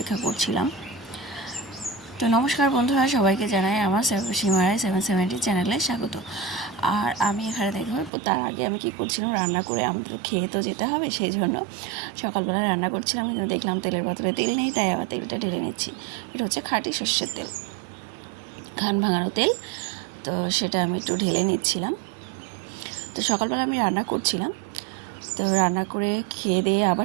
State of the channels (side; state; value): left; drops out; at 8.1 s